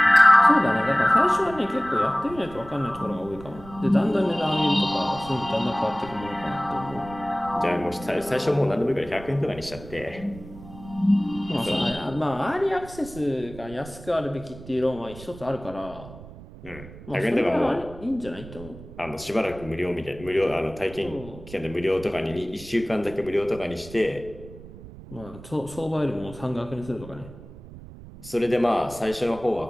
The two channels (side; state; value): right; noise; rumble, 17 dB below the sound